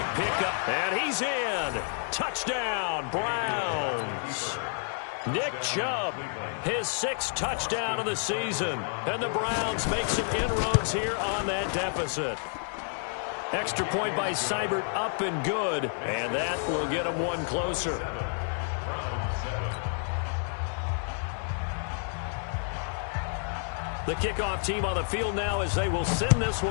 pickup. And he's in. Touchdown, Browns. Nick Chubb, his 6th touchdown of the season. And the Browns make some inroads here on that deficit. Extra point by Seibert up and good. And that will get him one closer. The kickoff team on the field now as they will send this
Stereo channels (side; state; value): right; silent; 58 dB below the other